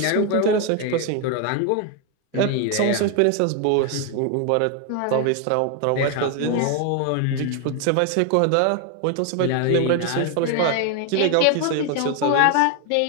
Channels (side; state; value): both; different; correlation 0.01